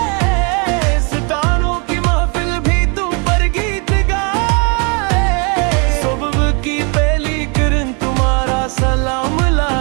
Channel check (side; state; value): left; quieter; 34.1 dB